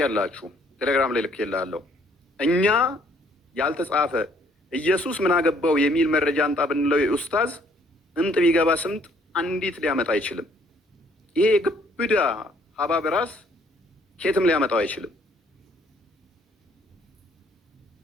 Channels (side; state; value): both; normal; correlation 0.64